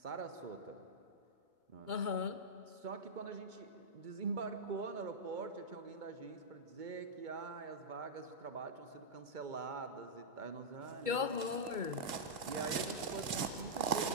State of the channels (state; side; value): late; left; 2.2 ms